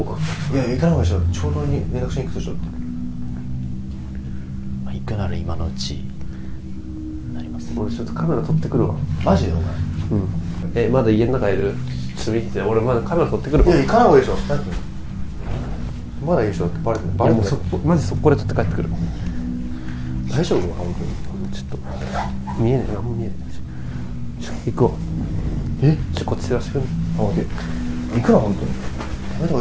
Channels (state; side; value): identical; both; correlation 1.00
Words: こうか。いや、行かない方がいいでしょ。長老に連絡しに行くでしょって。まあ、行くなら今のうちになります。俺ちょっとカメラ撮ってくるわ。マジでお前。まだ家の中いる？ちょっと見てて、俺まだカメラ撮ってくるわ。いや、行かない方がいいでしょ。まだいいでしょってバレてない。バレてない。マジ速攻で撮って帰ってくる。大丈夫？本当に。ちょっと見えねえ、何も見えねえ。行くわ。こっち照らしてくる。あ、オッケー。行くな、本当に。やめた方